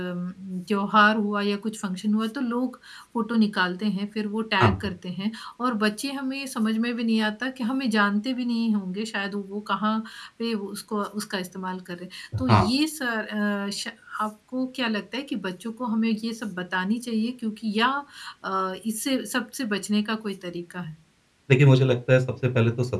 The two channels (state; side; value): identical; both; correlation 1.00